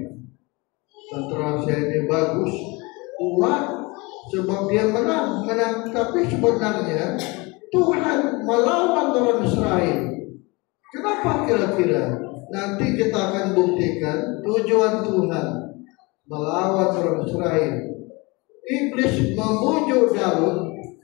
Tentera saya ini bagus, kuat, sebab dia menang. Tapi sebenarnya Tuhan melawan orang Israel. Kenapa kira-kira? Nanti kita akan buktikan tujuan Tuhan melawan orang Israel. Iblis membujuk Daud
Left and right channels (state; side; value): quieter; right; 26.0 dB